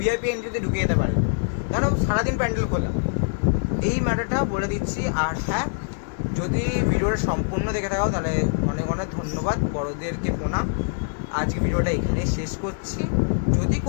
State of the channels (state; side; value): silent; right; digital silence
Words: ভিআইপি এন্ট্রিতে ঢুকে যেতে পারে, কেন সারাদিন প্যান্ডেল খোলা। এই ম্যাটারটা বলে দিচ্ছি। আর হ্যাঁ, যদি ভিডিওটা সম্পূর্ণ দেখে থাকো তাহলে অনেক অনেক ধন্যবাদ, বড়দেরকে প্রণাম। আজকে ভিডিওটা এখানে শেষ করছি। যদি